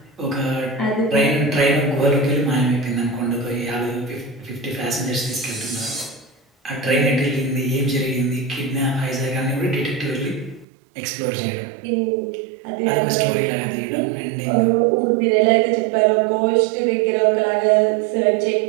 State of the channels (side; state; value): left; drops out; at 10.7 s